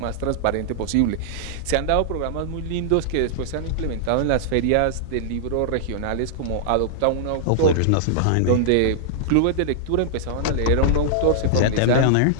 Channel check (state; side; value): different; both; correlation -0.01